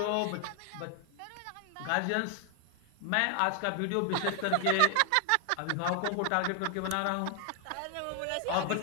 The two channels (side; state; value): both; different; correlation 0.00